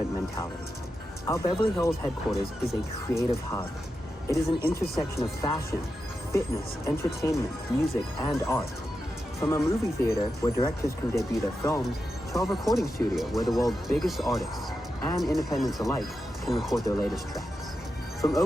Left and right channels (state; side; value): normal; both; correlation 0.89